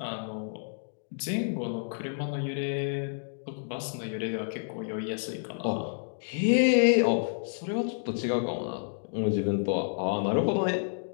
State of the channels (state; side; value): silent; right; digital silence